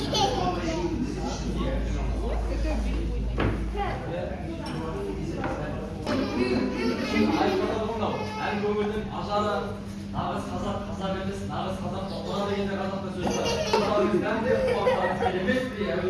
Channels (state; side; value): identical; both; correlation 1.00